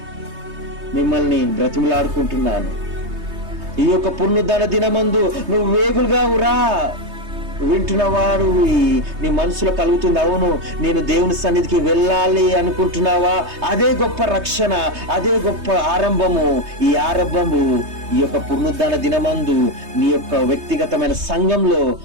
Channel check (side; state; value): left; late; 3.2 ms